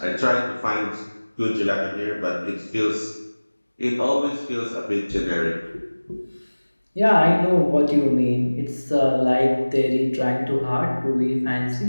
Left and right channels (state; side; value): inverted; both; correlation -1.00